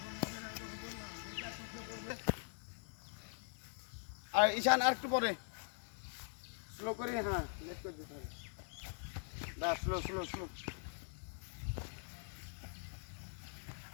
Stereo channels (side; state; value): right; silent; digital silence